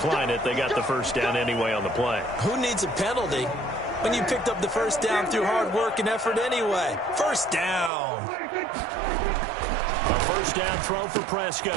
it. They got the first down anyway on the play. Who needs a penalty when you picked up the first down through hard work and effort anyway? First down. A first down throw for Prescott.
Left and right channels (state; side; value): drops out; left; at 7.9 s